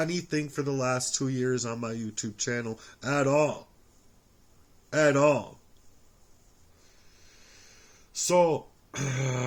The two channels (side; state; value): both; identical; correlation 1.00